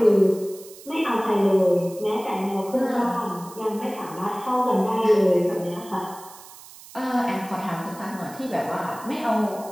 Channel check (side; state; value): right; noise; hiss, 19 dB below the sound